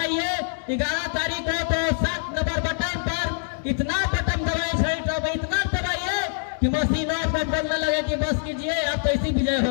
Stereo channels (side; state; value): right; silent; digital silence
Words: 11 तारीख को तो 7 नंबर बटन पर इतना बटन दबाए, छड़ी छाप इतना दबाइए कि मशीनों पर बोलने लगे कि बस कीजिए आप तो इसी विजय